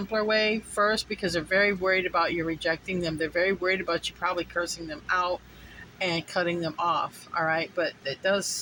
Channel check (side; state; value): both; identical; correlation 1.00